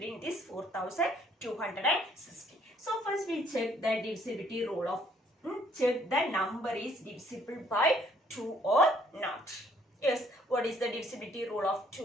in this 4260? So first we check the divisibility rule of check the number is divisible by 2 or not. Yes, what is the divisibility rule of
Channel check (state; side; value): normal; both; correlation 0.64